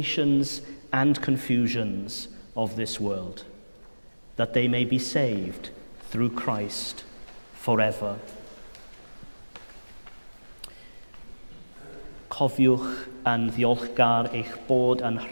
and confusions of this world, that they may be saved through Christ forever. Cofiwch yn ddiolchgar eich bod yn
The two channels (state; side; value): inverted; both; correlation -1.00